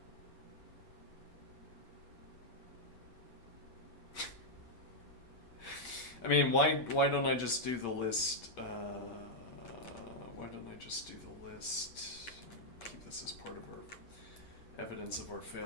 I mean, why don't I just do the list? Why don't I just do the list? Keep this as part of our evidence of our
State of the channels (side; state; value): right; late; 8.6 ms